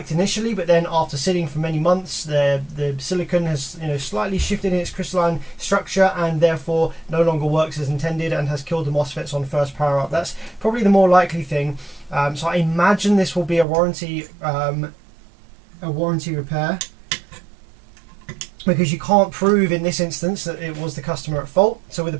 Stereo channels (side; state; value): left; drops out; at 13.7 s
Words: initially, but then after sitting for many months, the silicon has slightly shifted in its crystalline structure and therefore no longer works as intended and has killed the MOSFETs on first power up. That's probably the more likely thing. So I imagine this will be a warranty repair, because you can't prove in this instance that it was the customer at fault. So with a